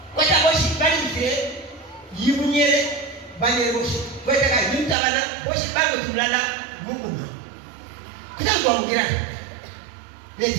kwa sababu bali mzee yimunyele banye boshi kwa taka yimtabana boshi bango tulala Mungu kitango ngira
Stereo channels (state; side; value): drops out; left; at 5.0 s